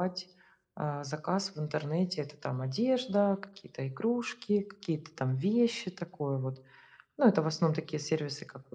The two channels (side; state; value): both; identical; correlation 1.00